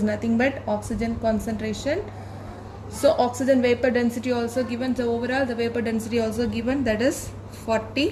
nothing but oxygen concentration. So oxygen vapor density also given, so overall the vapor density also given, that is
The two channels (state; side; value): identical; both; correlation 1.00